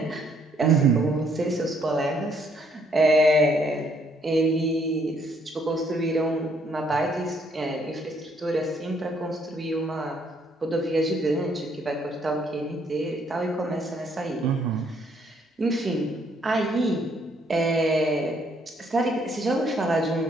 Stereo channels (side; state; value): both; normal; correlation 0.68